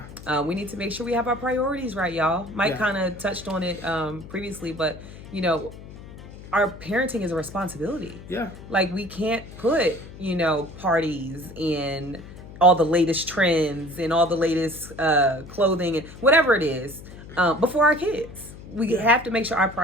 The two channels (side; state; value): left; noise; hum, 16 dB below the sound